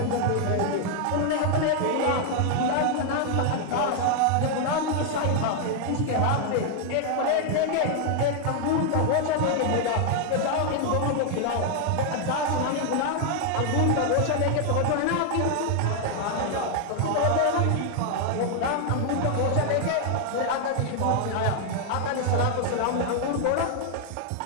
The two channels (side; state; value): both; different; correlation 0.00